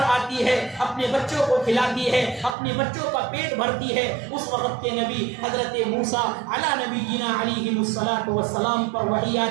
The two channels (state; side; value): drops out; left; at 2.6 s